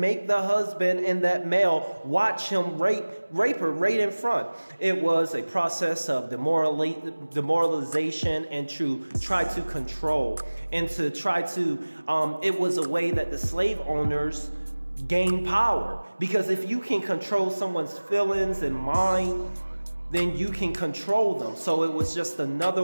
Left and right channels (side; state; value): both; inverted; correlation -1.00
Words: make the husband and that male watch him rape her right in front. It was a process of demoralization and to try to control and to try to. It was a way that the slave owners gain power, because if you can control someone's feelings and mind, then you can control them. So it was just